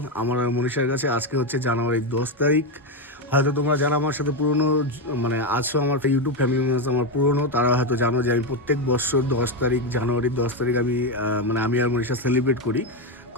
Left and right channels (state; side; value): normal; both; correlation 0.09